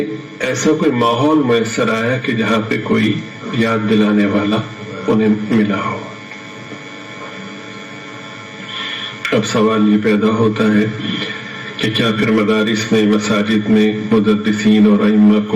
ایسا کوئی ماحول میسر آیا کہ جہاں پہ کوئی یاد دلانے والا انہیں ملا ہو۔ اب سوال یہ پیدا ہوتا ہے کہ کیا پھر مدارس میں، مساجد میں مدرسین اور ائمہ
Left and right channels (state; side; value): identical; both; correlation 1.00